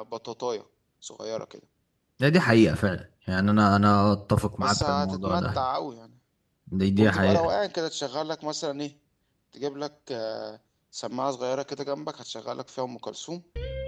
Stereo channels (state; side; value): identical; both; correlation 1.00